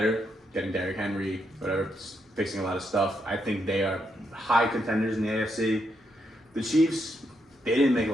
getting Derrick Henry, whatever, fixing a lot of stuff. I think they are high contenders in the AFC. The Chiefs, they didn't make a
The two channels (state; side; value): normal; both; correlation 0.79